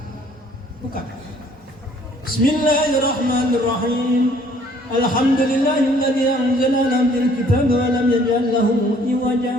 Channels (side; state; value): both; normal; correlation 0.59